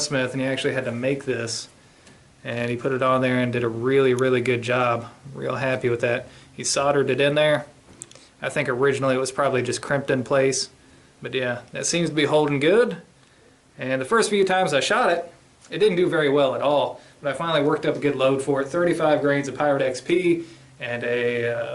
and he actually had to make this, and he put it on there and did a really, really good job. Real happy with that. He soldered it in there. I think originally it was probably just crimped in place, but yeah, that seems to be holding good. And the first few times I shot it, it didn't do very well at all. But I finally worked up a good load for it. 35 grains of Pirate XP and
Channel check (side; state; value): both; identical; correlation 1.00